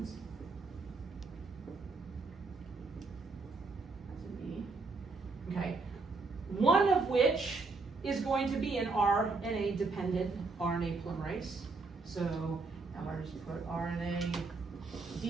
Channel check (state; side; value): quieter; left; 4.0 dB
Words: That's a B. Okay, one of which is going to be an RNA-dependent RNA polymerase. So I'm going to just put RNA